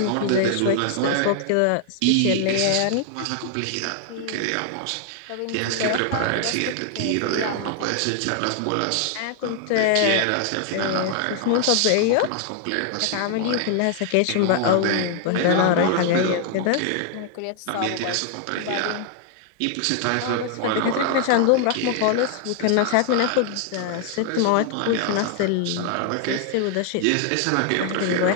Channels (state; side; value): different; both; correlation 0.00